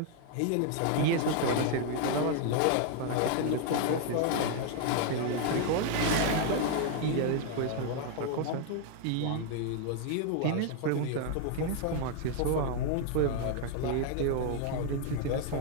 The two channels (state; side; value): different; both; correlation 0.00